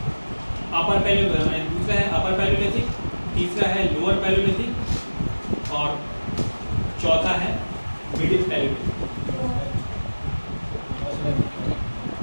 दूसरा है अपर पैलियोलिथिक, तीसरा है lower Palaeolithic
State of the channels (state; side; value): inverted; both; correlation -1.00